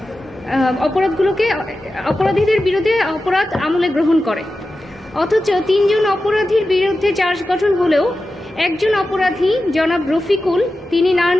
অপরাধীদের বিরুদ্ধে অপরাধ আমলে গ্রহণ করে। অথচ 3 জন অপরাধীর বিরুদ্ধে চার্জ গঠন হলেও একজন অপরাধী জনাব রফিকুল, তিনি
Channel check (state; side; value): normal; both; correlation 0.93